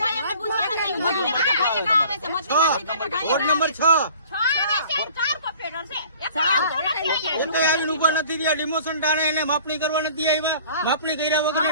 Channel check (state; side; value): inverted; both; correlation -0.49